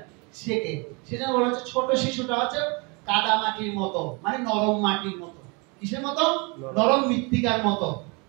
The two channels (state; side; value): quieter; left; 30.4 dB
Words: শেখে। সেজন্য বলা হচ্ছে ছোট শিশুটা হচ্ছে কাদা মাটির মতো, মানে নরম মাটির মতো। কিসের মতো? নরম মৃত্তিকার মতো।